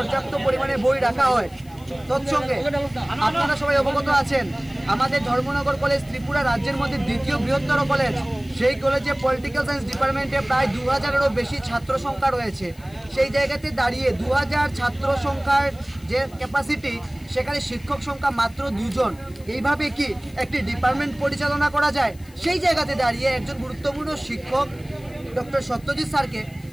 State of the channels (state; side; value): noise; left; hiss, 26 dB below the sound